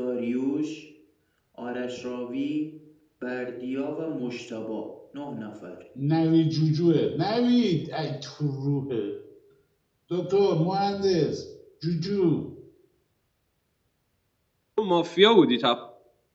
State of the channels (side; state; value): both; identical; correlation 1.00